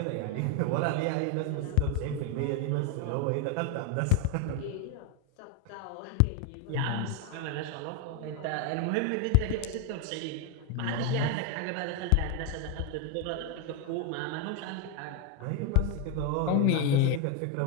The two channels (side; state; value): both; different; correlation 0.01